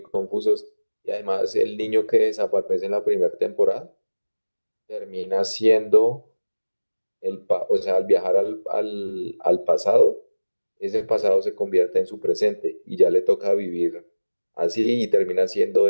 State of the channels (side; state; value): both; inverted; correlation -1.00